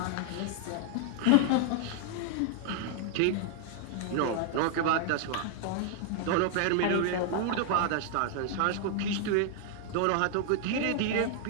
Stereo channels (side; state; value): both; different; correlation 0.00